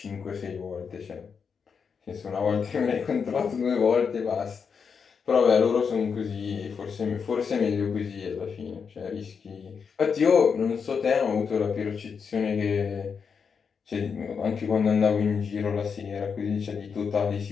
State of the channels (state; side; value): quieter; right; 6.1 dB